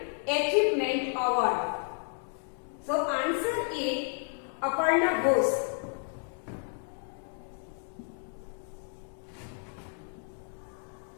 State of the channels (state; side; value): silent; right; 57 dB below the other